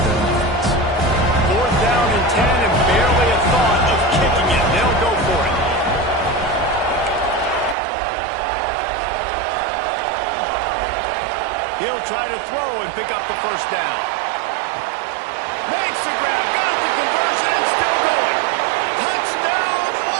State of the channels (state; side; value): drops out; left; at 7.8 s